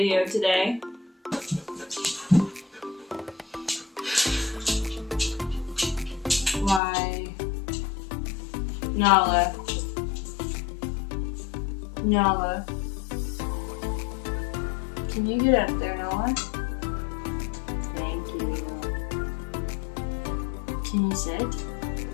today. Why? Nala. Can you get up there, Nala? Thank you. Can you sit?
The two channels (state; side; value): drops out; right; at 6.8 s